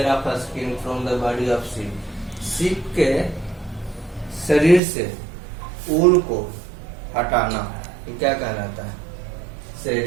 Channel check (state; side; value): drops out; left; at 4.8 s